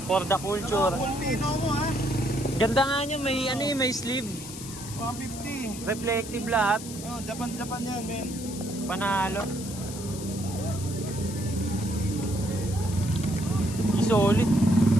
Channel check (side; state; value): left; noise; hiss, 12 dB below the sound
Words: For the culture. Pulpino mo ha. Ganda nga nyo, may ano eh, may sleeve. 150. Reflective lahat. Oh, Japan yan, men. Panalo. Solid.